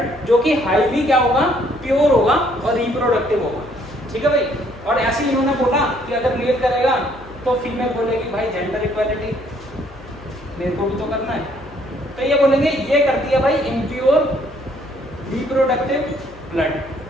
जो कि हाईली क्या होगा? प्योर होगा और रिप्रोडक्टिव होगा, ठीक है भाई। और ऐसे ही इन्होंने बोला कि अगर मेल करेगा तो फीमेल बोलेगी भाई जेंडर इक्वालिटी, मेरे को भी तो करना है, तो ये बोलेंगे ये करती है भाई इम्प्योर रिप्रोडक्टिव ब्लड।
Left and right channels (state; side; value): noise; left; hum, 21 dB below the sound